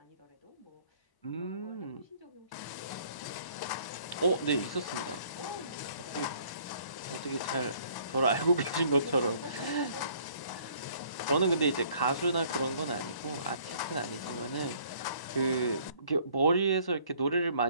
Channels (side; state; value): right; late; 1.0 ms